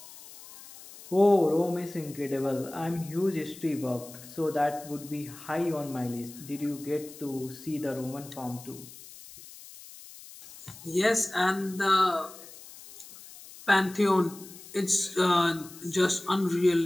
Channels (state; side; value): noise; left; hiss, 18 dB below the sound